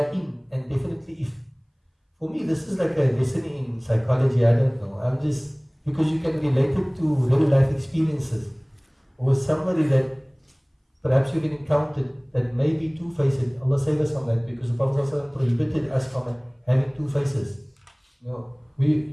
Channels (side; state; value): both; identical; correlation 1.00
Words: in, and definitely if. For me, this is like a lesson in psychology, I don't know. I'm just, because you can relate it to real life experiences. Or somebody that perhaps you've encountered that may be two-faced. Allah save us from that, because the Prophet ﷺ prohibited us from having two faces.